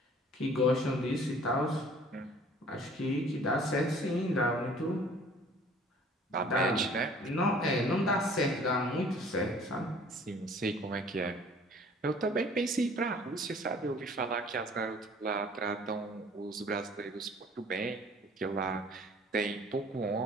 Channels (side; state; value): both; normal; correlation 0.52